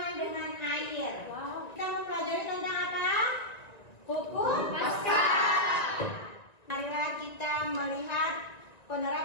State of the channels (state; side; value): late; right; 1.9 ms